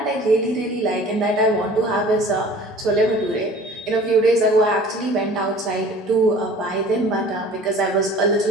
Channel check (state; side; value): normal; both; correlation 0.46